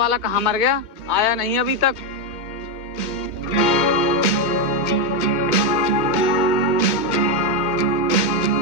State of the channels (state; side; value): late; right; 2.2 ms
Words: कहाँ मर गया, आया नहीं अभी तक।